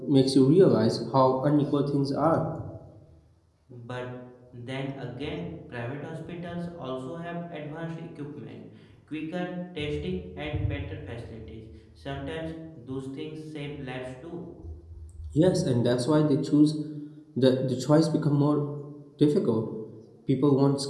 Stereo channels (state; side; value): identical; both; correlation 1.00